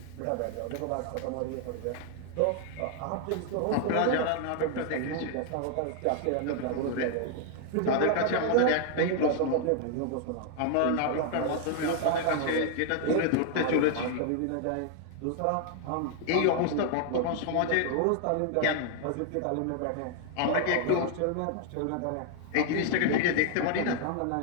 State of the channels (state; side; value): different; both; correlation 0.00